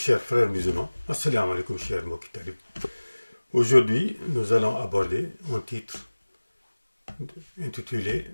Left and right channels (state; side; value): inverted; both; correlation -1.00